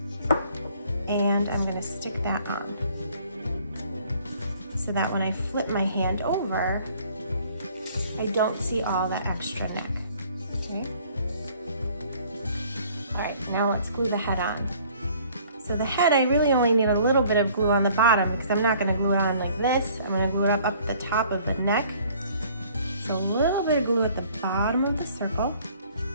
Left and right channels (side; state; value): both; inverted; correlation -0.56